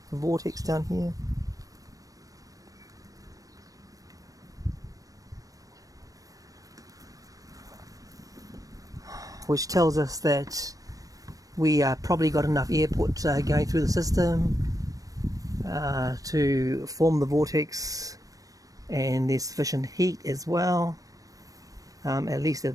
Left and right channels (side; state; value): left; late; 0.17 ms